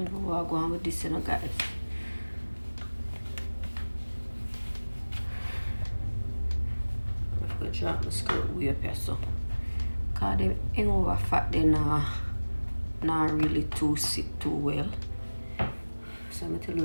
will go on with this, you know, guys. I'm going to drop my skirt way up here, so. Because they ain't over fat, they not really sit too well. So I'm telling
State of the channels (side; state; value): both; inverted; correlation -1.00